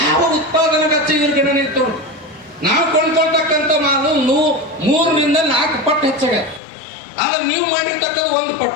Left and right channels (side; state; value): right; drops out; at 6.6 s